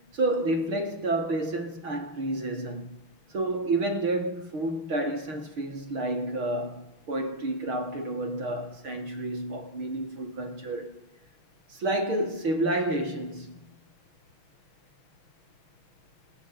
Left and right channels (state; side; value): late; left; 6.5 ms